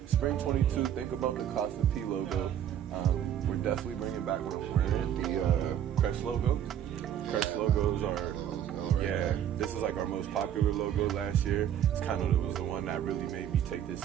Spring 22, think about the Coffin P logo. We're definitely bringing back what I'm wearing, the Crest logo. Crest logos are, this is like our most popular logo last year. It's kind of, it was the one that really made me take this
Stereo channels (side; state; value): left; quieter; 10.1 dB